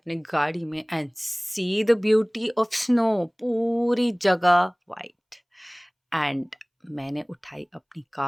गाड़ी में and see the beauty of snow, पूरी जगह वाइट। एंड मैंने उठाई अपनी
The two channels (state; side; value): identical; both; correlation 1.00